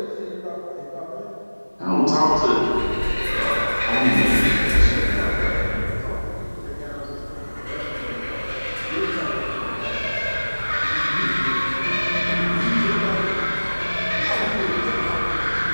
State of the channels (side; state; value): both; inverted; correlation -1.00